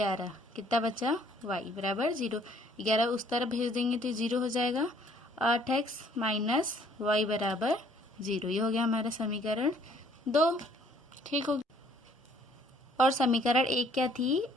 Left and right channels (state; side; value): normal; both; correlation 0.61